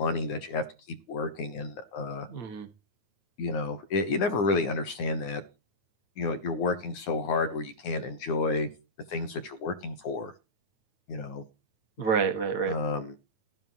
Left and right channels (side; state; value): right; late; 9.8 ms